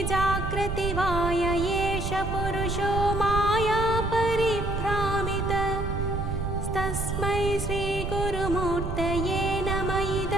जागृति वाय एष पुरुषो माया परिभ्रामितः। तस्मै श्रीगुरुमूर्तये नमः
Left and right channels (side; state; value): right; noise; rumble, 3 dB below the sound